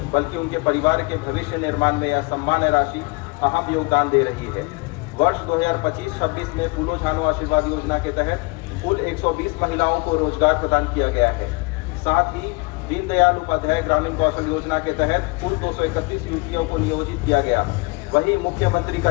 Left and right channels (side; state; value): right; quieter; 27.9 dB